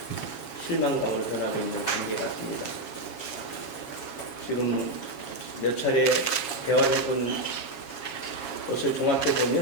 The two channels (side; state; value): right; late; 7.2 ms